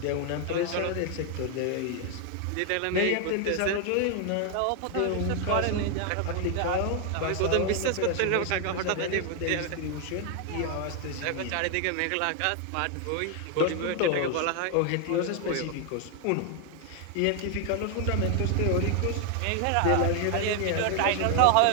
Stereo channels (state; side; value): different; both; correlation 0.00